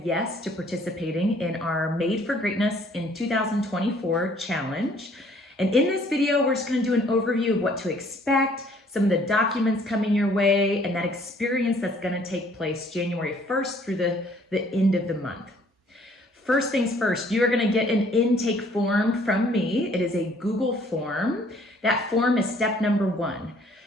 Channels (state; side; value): normal; both; correlation 0.60